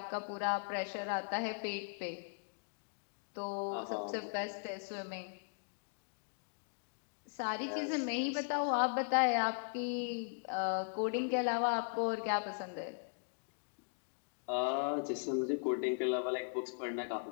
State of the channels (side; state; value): right; silent; digital silence